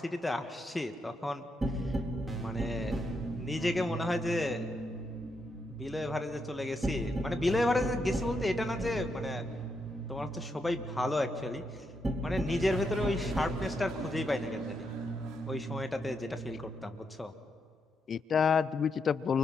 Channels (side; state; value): both; normal; correlation 0.81